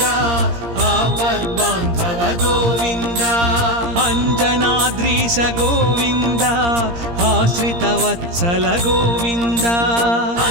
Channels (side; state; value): left; late; 17 ms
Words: आपद्बांधव गोविंद अंजनाद्रीश गोविंद आश्रित वत्सल गोविंद